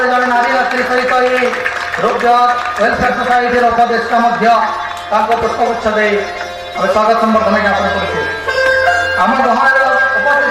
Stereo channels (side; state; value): both; identical; correlation 1.00